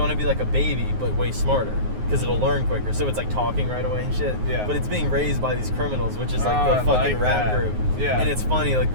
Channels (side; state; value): left; late; 9.5 ms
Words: to be like a baby, but way smarter. Because it'll learn quicker, so it's like talking right away and shit. Yeah. But it's being raised by these criminals, which is like the fucking rap group. Yeah. And it's funny, like